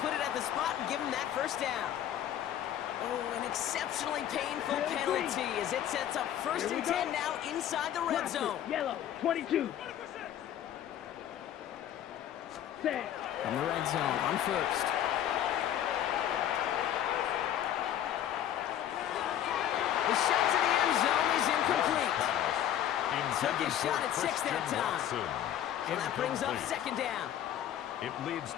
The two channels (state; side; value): quieter; right; 11.0 dB